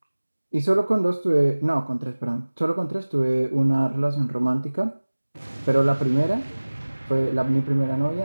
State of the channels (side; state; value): both; inverted; correlation -1.00